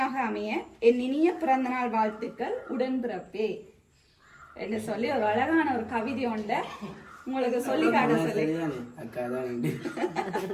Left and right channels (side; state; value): both; identical; correlation 1.00